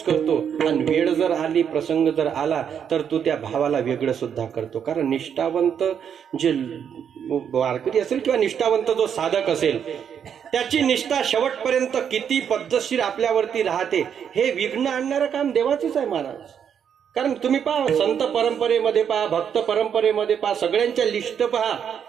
करतो आणि वेळ जर आली, प्रसंग जर आला तर तू त्या भावाला वेगळं सुद्धा करतो. कारण निष्ठावंत जे वारकरी असेल किंवा निष्ठावंत जो साधक असेल त्याची निष्ठा शेवटपर्यंत किती पद्धतशीर आपल्यावरती राहते हे विघ्न आणणारं काम देवाचंच आहे महाराज. कारण तुम्ही पहा, संत परंपरेमध्ये पहा, भक्त परंपरेमध्ये पहा, सगळ्यांच्या लिस्ट पहा,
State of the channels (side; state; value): left; quieter; 8.1 dB